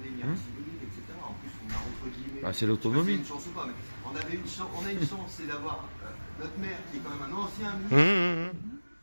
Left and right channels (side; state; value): both; inverted; correlation -1.00